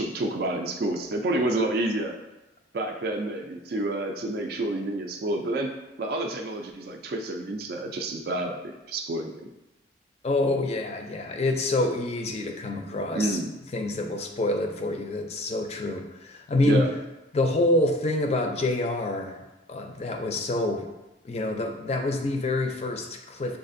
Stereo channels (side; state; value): both; normal; correlation 0.46